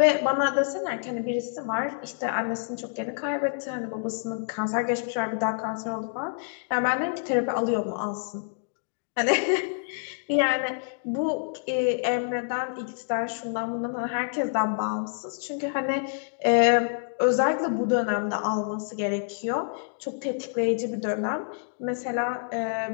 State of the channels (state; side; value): silent; right; digital silence